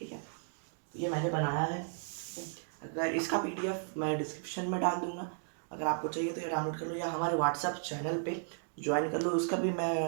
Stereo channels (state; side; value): silent; left; digital silence